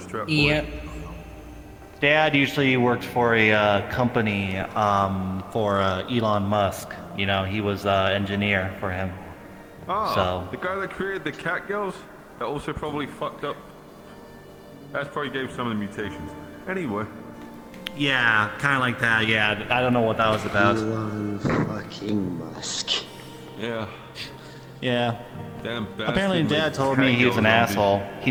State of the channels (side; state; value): both; identical; correlation 1.00